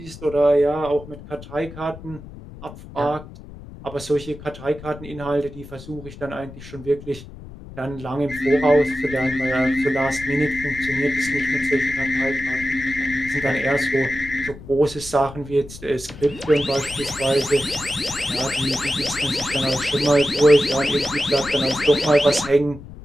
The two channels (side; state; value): left; noise; rumble, 15 dB below the sound